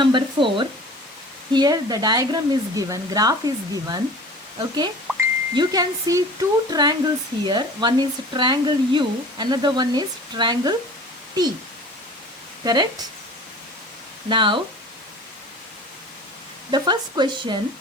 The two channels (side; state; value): both; normal; correlation 0.42